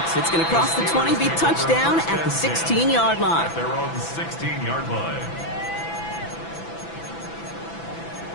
It's going to cross the 20, be touchdown at the 16-yard line. At their own 16-yard line.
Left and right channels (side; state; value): right; late; 6.0 ms